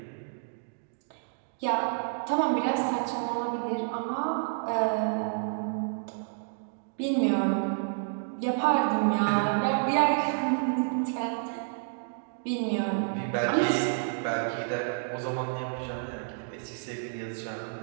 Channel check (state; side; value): silent; left; digital silence